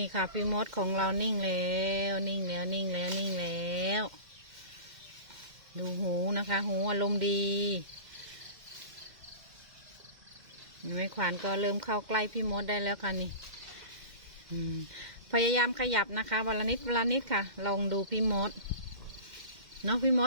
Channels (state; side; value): late; left; 2.1 ms